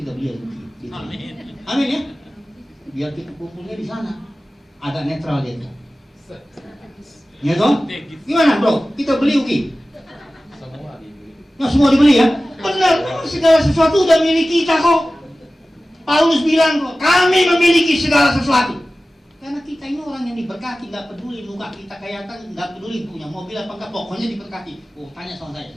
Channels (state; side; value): normal; both; correlation 0.96